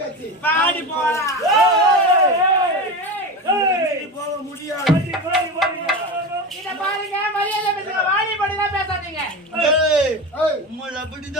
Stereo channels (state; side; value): normal; both; correlation 0.24